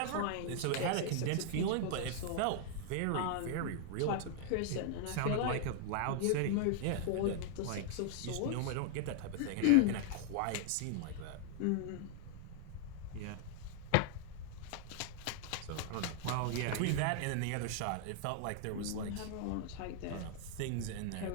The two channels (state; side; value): different; both; correlation 0.00